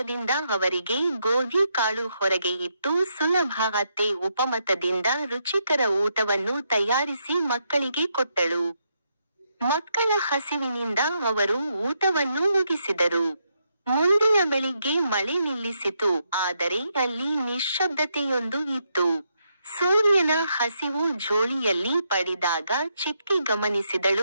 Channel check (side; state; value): both; inverted; correlation -0.79